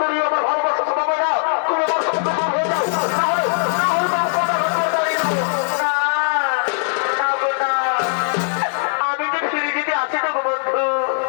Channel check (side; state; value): right; silent; 57 dB below the other